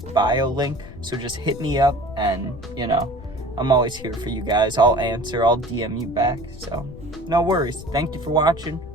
bio link. So just hit me up, and I'm always here for you guys. I'll answer, I'll DM you back. So no worries. Thank you for watching.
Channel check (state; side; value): noise; left; rumble, 15 dB below the sound